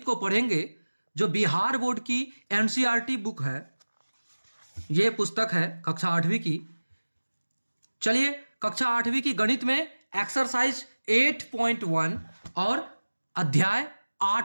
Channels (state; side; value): inverted; both; correlation -1.00